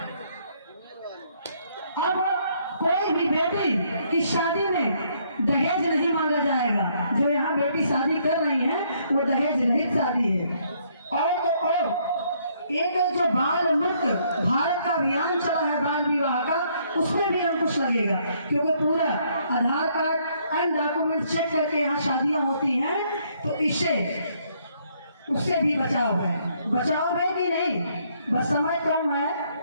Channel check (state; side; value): inverted; both; correlation -0.69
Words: अब कोई भी बेटी की शादी में दहेज नहीं मांगा जाएगा। जो यहाँ बेटी शादी कर रही है वो दहेज रहित शादी है। और तो और एक जो बाल मुक्त भारत का अभियान चला है बाल विवाह का, उसमें भी अंकुश लगेगा, क्योंकि पूरा आधार कार्ड एंड डॉक्यूमेंट चेक करके यहाँ शादियां होती हैं। तो इससे उससे भी बचाव है कि नहीं? बस समय कम है।